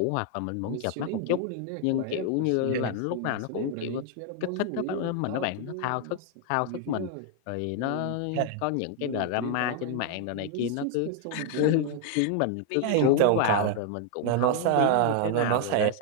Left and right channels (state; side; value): different; both; correlation 0.00